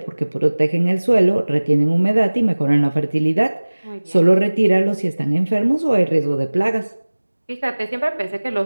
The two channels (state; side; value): inverted; both; correlation -1.00